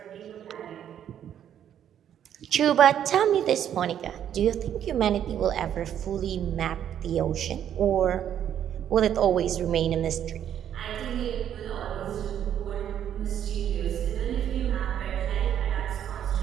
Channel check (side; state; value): left; quieter; 9.9 dB